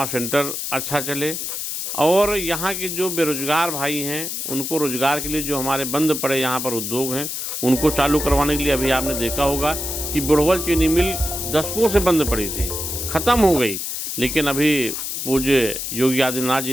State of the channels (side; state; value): left; noise; hiss, 4 dB below the sound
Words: सेंटर अच्छा चले, और यहाँ के जो बेरोजगार भाई हैं उनको रोजगार के लिए जो हमारे बंद पड़े यहाँ पर उद्योग हैं उनको चालू करवाने के लिए, अभी आपने देखा होगा कि बुढ़वल चीनी मिल दशकों से बंद पड़ी थी, ख़त्म हो गई, लेकिन अभी पूज्य योगी आदित्यनाथ